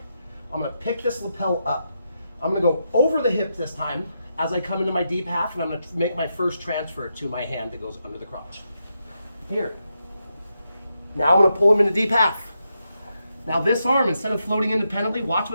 I'm going to pick this lapel up. I'm going to go over the hip this time as I come into my deep half, and I'm going to make my first transfer to my hand that goes under the crotch. Here. Now I'm going to pull him into deep half. Now this arm, instead of floating independently, watch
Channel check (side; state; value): both; inverted; correlation -0.84